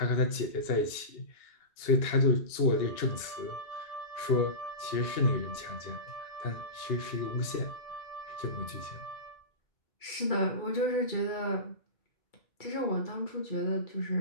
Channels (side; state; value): right; late; 2.7 ms